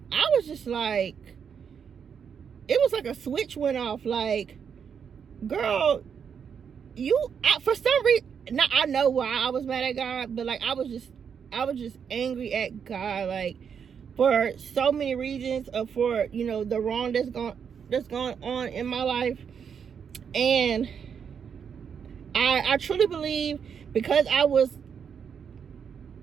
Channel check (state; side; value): quieter; left; 7.2 dB